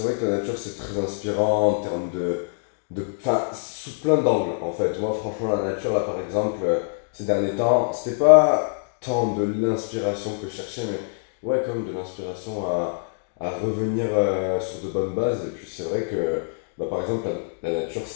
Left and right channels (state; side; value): silent; right; digital silence